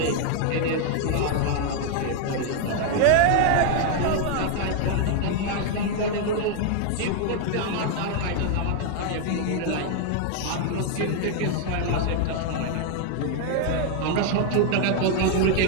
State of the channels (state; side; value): different; both; correlation 0.00